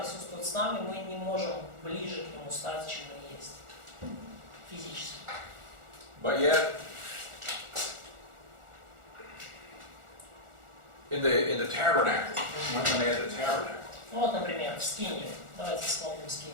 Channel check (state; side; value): late; left; 1.4 ms